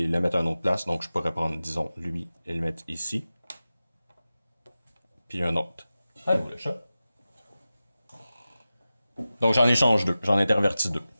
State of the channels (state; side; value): inverted; both; correlation -0.95